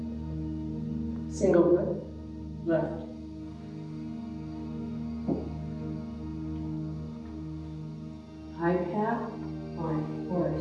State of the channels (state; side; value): identical; both; correlation 1.00